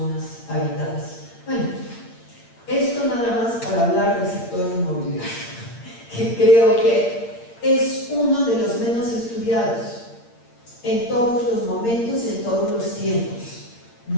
habitadas. Bueno, esto nada más para hablar del sector inmobiliario, que creo que es uno de los menos estudiados en todos los momentos y en todos los tiempos.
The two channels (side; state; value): right; late; 8.7 ms